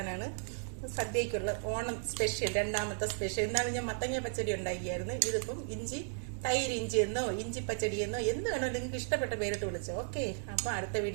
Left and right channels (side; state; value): left; silent; digital silence